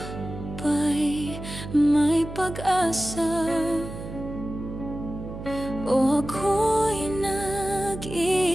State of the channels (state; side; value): noise; right; hum, 10 dB below the sound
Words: pa'y may pag-asa. O ako'y